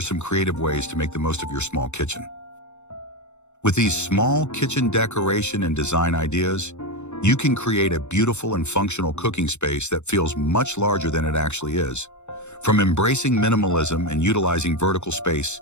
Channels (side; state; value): right; late; 0.83 ms